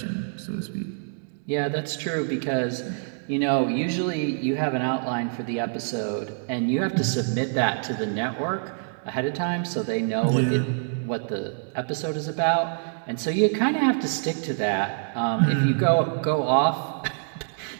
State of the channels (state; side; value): silent; left; digital silence